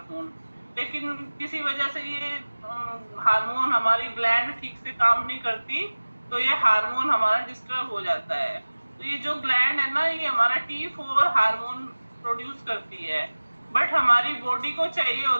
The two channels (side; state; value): both; inverted; correlation -1.00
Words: लेकिन किसी वजह से ये हार्मोन, हमारी ग्लैंड ठीक से काम नहीं करती, तो ये हार्मोन हमारा डिस्टर्ब हो जाता है। तो ये जो ग्लैंड है ना, ये हमारा T4 हार्मोन प्रोड्यूस करती है, बट हमारी बॉडी को चाहिए